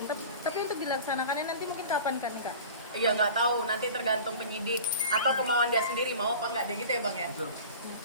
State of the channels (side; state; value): both; inverted; correlation -0.39